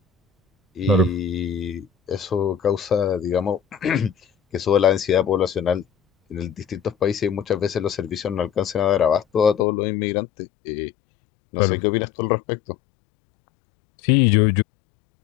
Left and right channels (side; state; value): right; drops out; at 9.7 s